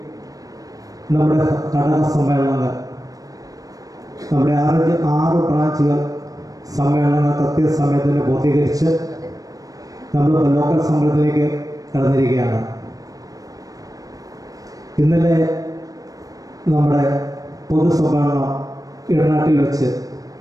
നമ്മുടെ ഘടക സമ്മേളനങ്ങൾ, നമ്മുടെ 6 ബ്രാഞ്ചുകൾ സമ്മേളനങ്ങൾ കൃത്യസമയത്തിന് പൂർത്തീകരിച്ച് നമ്മൾ ലോക്കൽ സമ്മേളനത്തിലേക്ക് കടന്നിരിക്കുകയാണ്. ഇന്നലെ നമ്മുടെ പൊതുസമ്മേളനം ഇടനാട്ടിൽ വെച്ച്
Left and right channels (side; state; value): left; late; 0.17 ms